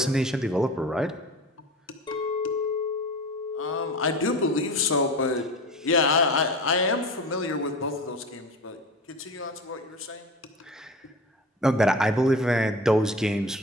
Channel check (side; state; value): both; normal; correlation 0.33